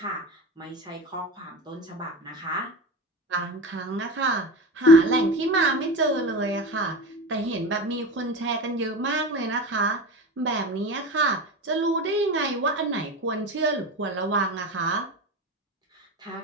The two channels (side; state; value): both; normal; correlation 0.27